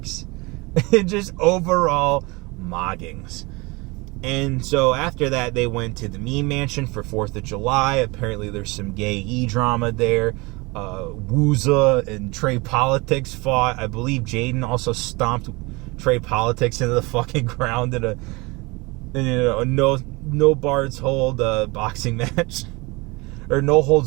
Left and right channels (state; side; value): quieter; left; 25.3 dB